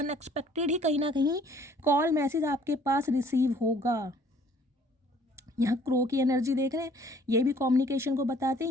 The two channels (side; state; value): both; normal; correlation 0.57